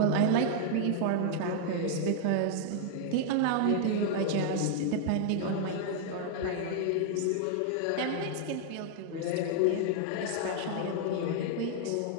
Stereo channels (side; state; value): both; different; correlation 0.00